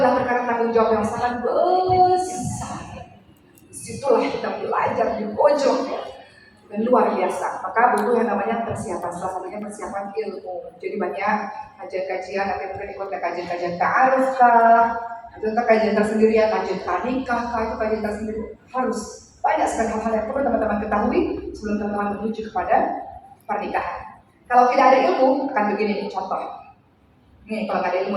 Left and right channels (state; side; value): identical; both; correlation 1.00